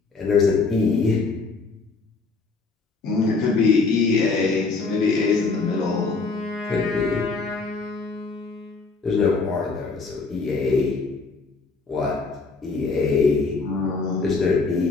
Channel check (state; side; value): quieter; right; 4.2 dB